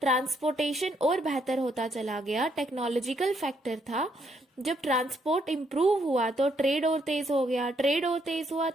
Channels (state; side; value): normal; both; correlation 0.73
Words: ट्रांसपोर्टेशन और बेहतर होता चला गया, टेक्नोलॉजिकल फैक्टर था, जब ट्रांसपोर्ट इंप्रूव हुआ तो ट्रेड और तेज हो गया, ट्रेड और तेज हुआ